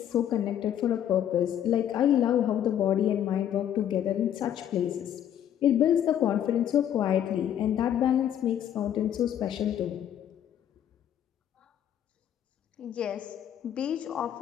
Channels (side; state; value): right; quieter; 10.3 dB